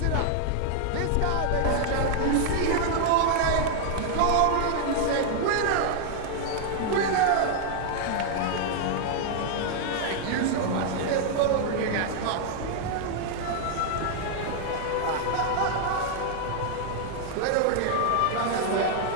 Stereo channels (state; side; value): different; both; correlation 0.00